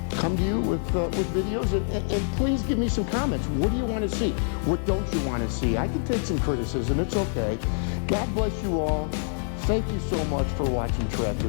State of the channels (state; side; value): silent; right; digital silence